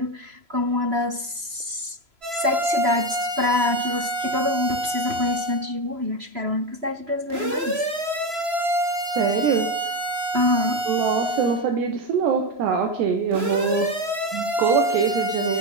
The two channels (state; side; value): late; left; 3.0 ms